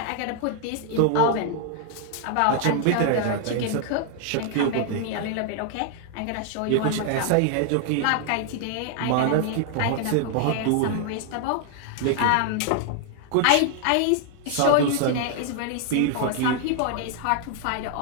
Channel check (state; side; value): different; both; correlation 0.00